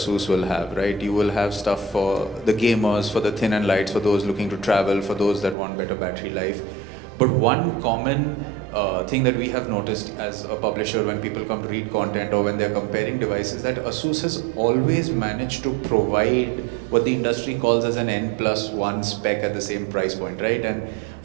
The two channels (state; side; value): drops out; left; at 5.6 s